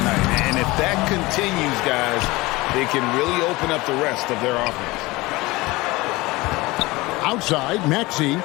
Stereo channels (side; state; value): right; quieter; 21.4 dB